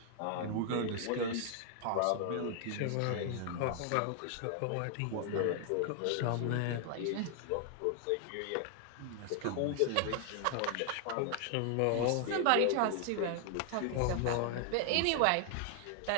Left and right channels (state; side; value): different; both; correlation 0.00